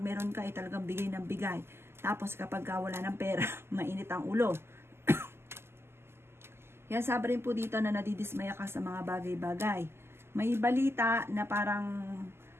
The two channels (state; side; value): late; left; 0.12 ms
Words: ka ay talagang bigay ng bigay. Tapos kapag wala ng pera, mainit ang ulo. Kaya sabi rin po dito na nadidismaya ka sa mga bagay-bagay. May balita na parang